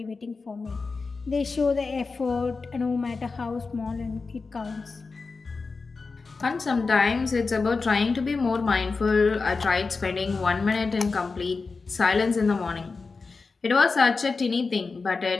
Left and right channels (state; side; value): quieter; right; 4.3 dB